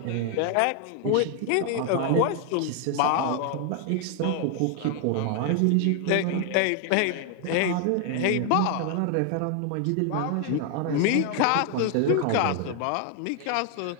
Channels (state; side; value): different; both; correlation 0.00